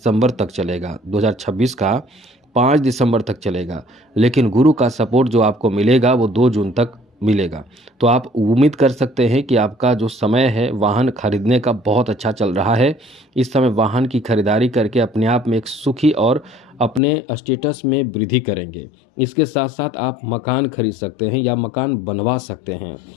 तक चलेगा, 2026 का 5 दिसंबर तक चलेगा, लेकिन गुरु का सपोर्ट जो आपको मिलेगा वो 2 जून तक मिलेगा। तो आप उम्मीद कर सकते हैं कि आपका जो समय है वाहन खरीदने का बहुत अच्छा चल रहा है। इस समय वाहन की खरीदारी करके अपने आप में एक सुखी और अपने स्टेटस में वृद्धि करेंगे। इसके साथ साथ आप मकान खरीद सकते हैं या मकान बनवा सकते हैं।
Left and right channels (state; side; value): drops out; right; at 17.0 s